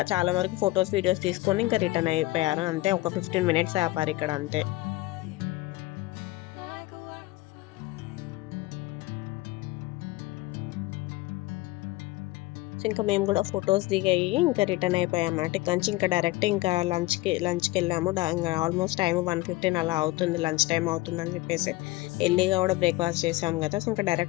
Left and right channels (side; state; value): right; quieter; 19.1 dB